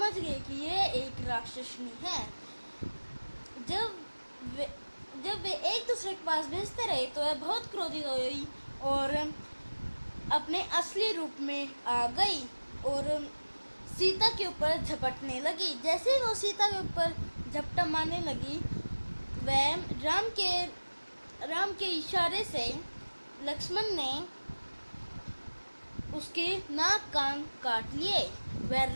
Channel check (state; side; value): inverted; both; correlation -1.00